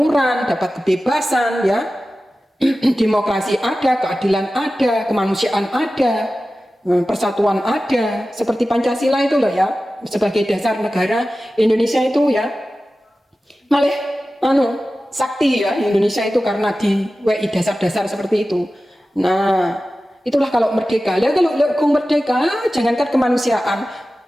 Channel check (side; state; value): both; normal; correlation 0.95